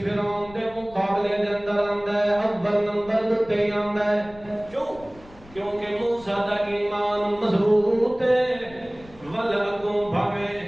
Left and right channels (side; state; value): left; noise; rumble, 22 dB below the sound